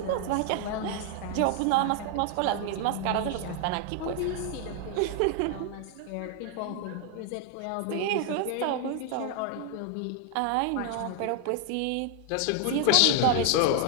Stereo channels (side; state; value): both; different; correlation 0.00